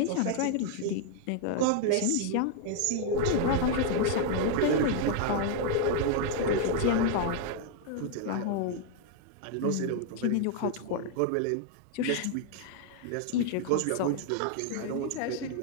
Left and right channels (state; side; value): different; both; correlation 0.00